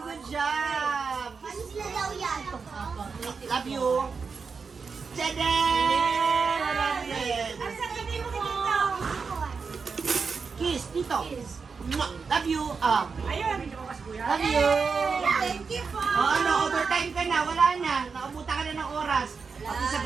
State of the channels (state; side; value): quieter; left; 5.2 dB